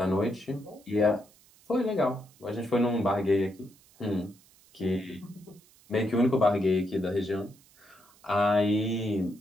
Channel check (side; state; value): right; noise; hiss, 28 dB below the sound